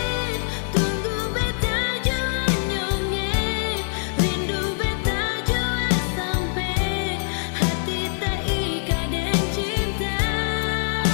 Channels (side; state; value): right; silent; digital silence